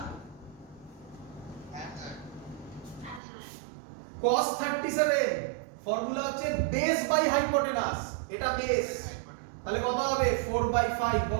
cos 37 ফর্মুলা হচ্ছে বেস বাই হাইপোটেনাস। এটা বেস, তাহলে কত হবে? 4/5।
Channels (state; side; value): drops out; left; at 3.2 s